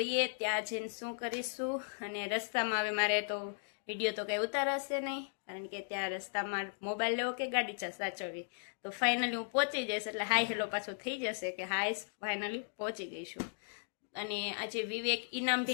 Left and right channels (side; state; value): right; silent; digital silence